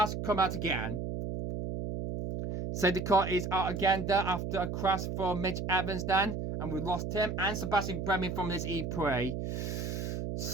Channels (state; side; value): noise; right; hum, 3 dB below the sound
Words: come out again. Safety car is out again there after a crash for Mitch Evans then. And we lost him and Sebastian Bremy from this E-PRIX.